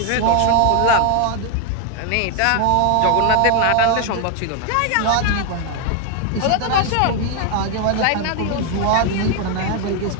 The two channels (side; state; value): both; different; correlation 0.01